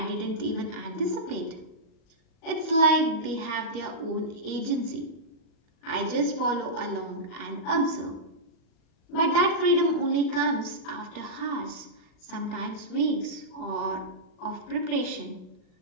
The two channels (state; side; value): late; right; 38 ms